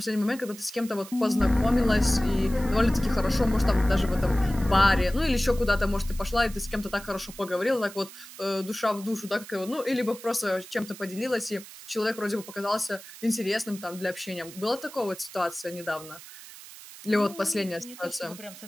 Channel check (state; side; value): noise; right; hiss, 16 dB below the sound